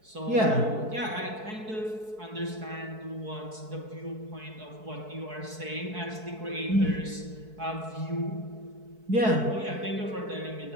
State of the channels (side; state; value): left; late; 4.6 ms